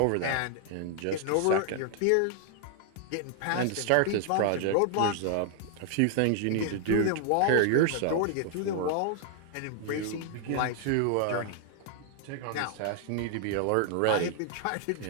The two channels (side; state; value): both; different; correlation 0.00